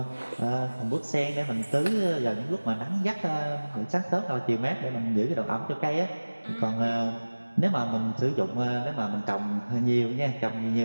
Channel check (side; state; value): both; inverted; correlation -1.00